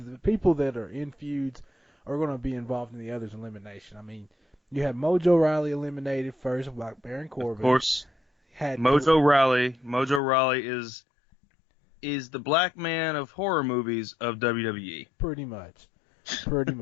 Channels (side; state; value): right; drops out; at 10.2 s